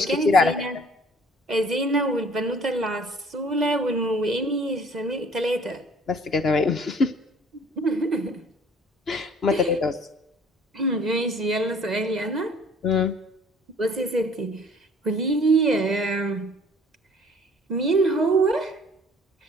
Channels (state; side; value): normal; both; correlation 0.54